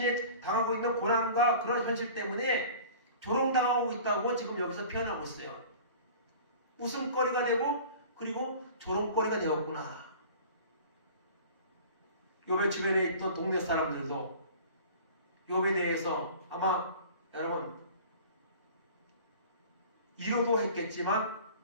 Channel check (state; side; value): inverted; both; correlation -0.42